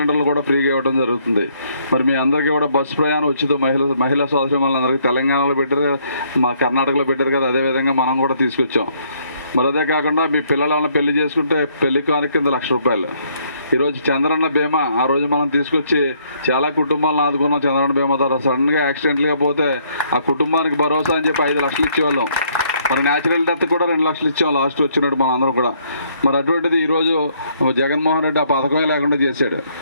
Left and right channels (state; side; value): inverted; both; correlation -0.67